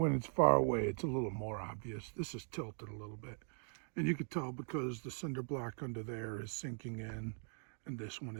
it's far away, it's a little more obvious. This is tilted a little bit. And you could tell because the cinder block under there is sinking in and this one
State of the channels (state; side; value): silent; left; 51 dB below the other